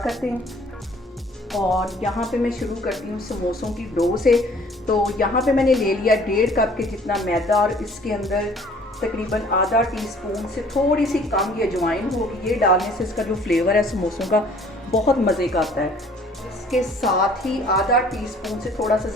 करते हैं। और यहाँ पे मैं शुरू करती हूँ समोसों की डो से। तो यहाँ पे मैंने ले लिया 1.5 कप के जितना मैदा और इसके अंदर तकरीबन आधा टीस्पून से थोड़ी सी कम ये अजवाइन होगी। ये डालने से इसका जो फ्लेवर है समोसों का बहुत मज़े का आता है। इसके साथ ही आधा टीस्पून से थोड़ा सा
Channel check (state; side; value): normal; both; correlation 0.55